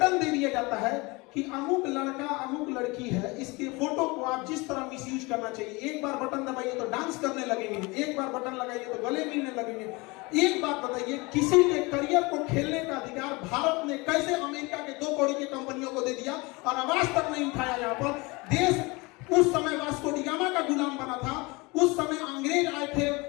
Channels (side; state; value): right; quieter; 25.2 dB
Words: दे दिया जाता है कि अमुक लड़का अमुक लड़की है, इसके फोटो को आप जिस तरह मिसयूज करना चाहिए, एक बार बटन दबाइए तो डांस करने लगेंगे, एक बार बटन लगाइए तो गले मिलने लगेंगे। एक बात बताइए, किसी के करियर को खेलने का अधिकार भारत ने कैसे अमेरिका के 2 कौड़ी की कंपनियों को दे दिया और आवाज तक नहीं उठाया? यहाँ पर देश उस समय वास्को डी गामा का गुलाम बना था, उस समय अंग्रेज आए थे,